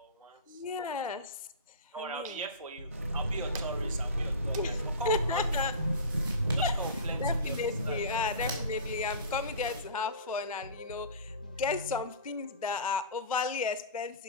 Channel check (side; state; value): both; inverted; correlation -0.32